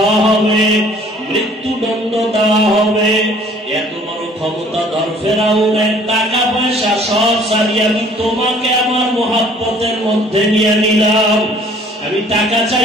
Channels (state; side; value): normal; both; correlation 0.55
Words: হবে, মৃত্যুদণ্ড দেওয়া হবে। এত বড় ক্ষমতাধর ফেরাউনের টাকা পয়সা সব ছাড়িয়ে আমি তোমাকে আমার মহব্বতের মধ্যে নিয়ে নিলাম। আমি টাকা